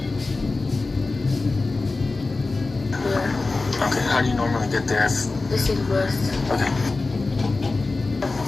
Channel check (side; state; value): right; quieter; 3.5 dB